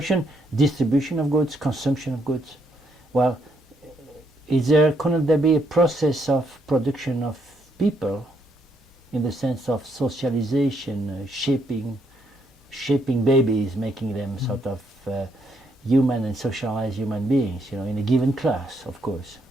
distribution of goods, consumption of goods. Well, couldn't there be a process of production of people in the sense of socialization, shaping babies, making them sort of human and socialized human beings, in a given class, of course.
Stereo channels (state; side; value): normal; both; correlation 0.74